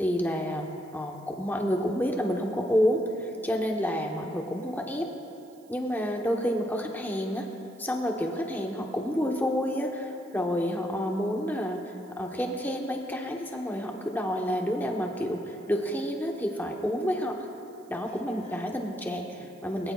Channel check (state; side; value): noise; right; hiss, 29 dB below the sound